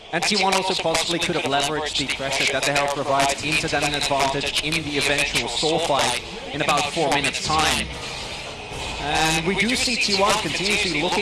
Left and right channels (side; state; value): both; identical; correlation 1.00